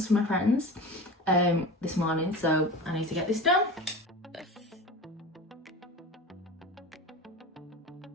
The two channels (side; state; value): both; normal; correlation 0.31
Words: for my friends this morning, so I need to get this done.